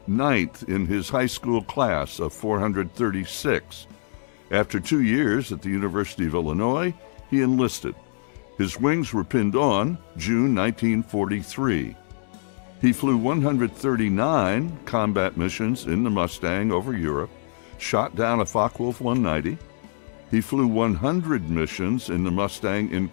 9th in his high school class of 436. After 2 years at the University of Illinois, he enlisted. His wings were pinned on June 1943. He flew 139 combat missions in the Mustang over Europe, shot down a Focke-Wulf 190. He flew 100 missions in the Mustang in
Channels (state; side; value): silent; right; 62 dB below the other